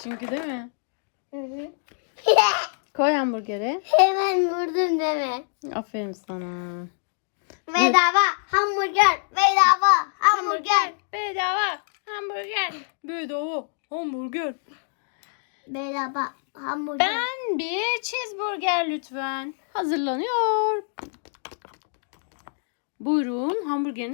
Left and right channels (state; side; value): silent; right; digital silence